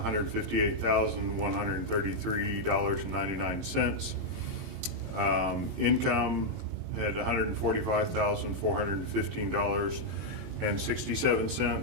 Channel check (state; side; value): late; left; 11 ms